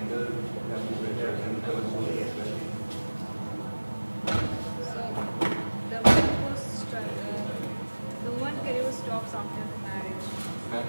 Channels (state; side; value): inverted; both; correlation -1.00